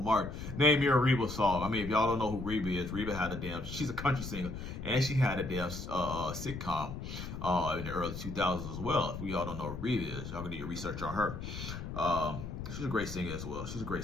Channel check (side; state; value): left; noise; rumble, 7 dB below the sound